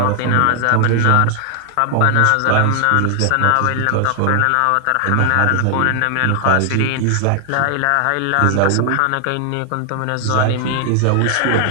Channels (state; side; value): different; both; correlation 0.00